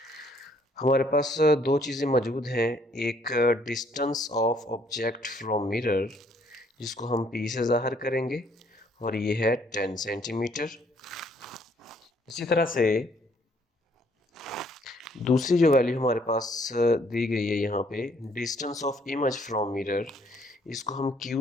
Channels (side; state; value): both; normal; correlation 0.65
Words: हमारे पास दो चीज़ें मौजूद हैं, एक distance of object from mirror जिसको हम P से ज़ाहिर करेंगे और ये है 10 सेंटीमीटर। इसी तरह से दूसरी जो वैल्यू हमारे पास दी गई है यहाँ पे, distance of image from mirror, इसको हम